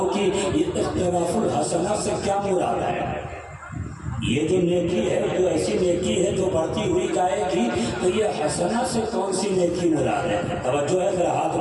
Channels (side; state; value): both; identical; correlation 1.00